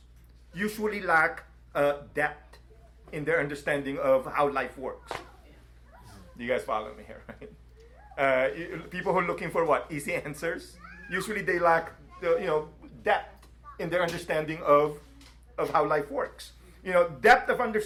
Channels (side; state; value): both; identical; correlation 1.00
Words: usually lack depth in their understanding of how life works. Do you guys follow me here? Right? People who are looking for what? Easy answers. Usually they lack depth in their understanding of how life works. Depth of